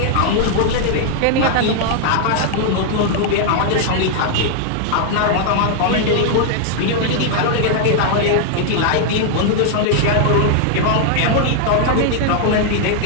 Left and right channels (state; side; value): different; both; correlation -0.01